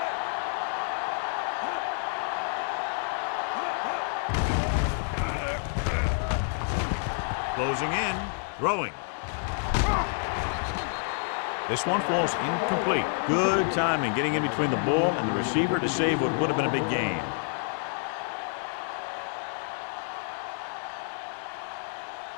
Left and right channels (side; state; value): right; silent; 59 dB below the other